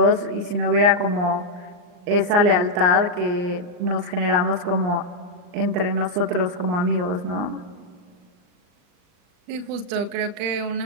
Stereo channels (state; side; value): late; left; 39 ms